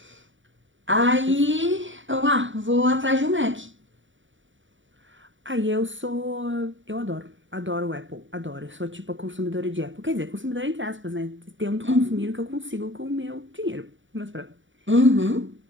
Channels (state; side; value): late; left; 0.56 ms